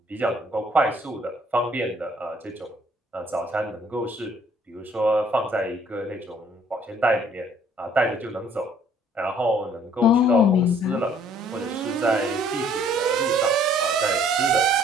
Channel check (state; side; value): normal; both; correlation 0.60